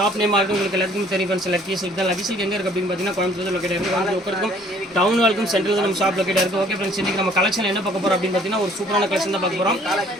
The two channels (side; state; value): both; normal; correlation 0.57